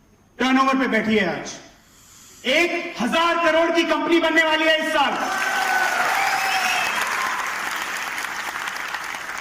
टर्नओवर पे बैठी है। आज 1000 करोड़ की कंपनी बनने वाली है इस साल।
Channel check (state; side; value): identical; both; correlation 1.00